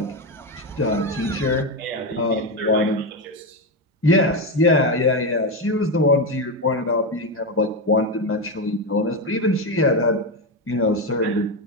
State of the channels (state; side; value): normal; both; correlation 0.11